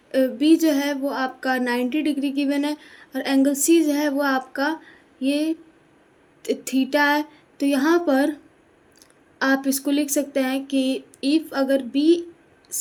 B जो है वो आपका 90 डिग्री गिवन है और एंगल C जो है वो आपका ये थीटा है। तो यहाँ पर आप इसको लिख सकते हैं कि इफ़ अगर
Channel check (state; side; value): identical; both; correlation 1.00